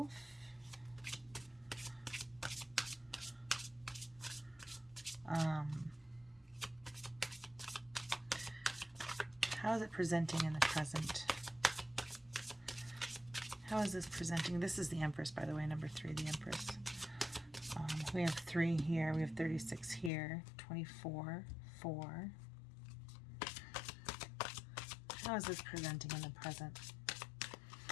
How is it presenting in the present? How is this presenting? This is the Empress, by the way, number 3, the Empress. We have 3 here. We have 36 here. 24, 4. How is this presenting in the present?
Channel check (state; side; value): drops out; right; at 20.1 s